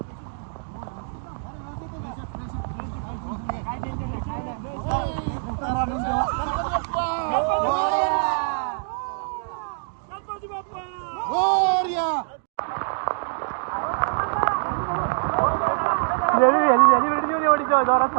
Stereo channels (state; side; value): silent; left; digital silence